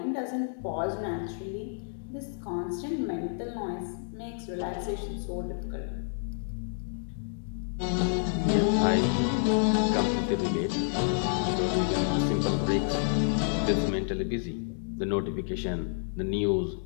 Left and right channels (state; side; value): silent; right; digital silence